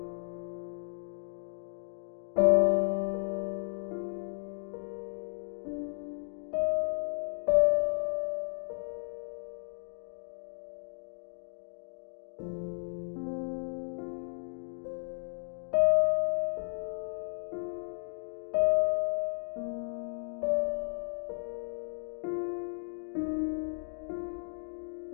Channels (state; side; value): silent; right; digital silence